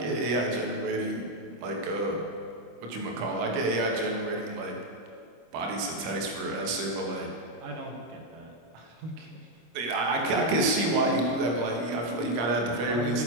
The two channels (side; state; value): left; late; 26 ms